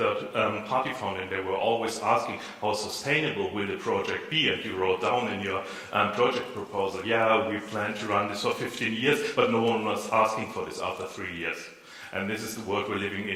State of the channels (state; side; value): identical; both; correlation 1.00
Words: fund and they were always asking how sustainable will the project be, and you wrote down in your project proposal, yeah, we plan to run this for 15 years, but no one was asking for this after 3 years. And this is the world we're living